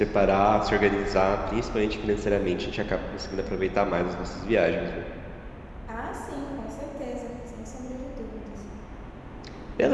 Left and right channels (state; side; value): identical; both; correlation 1.00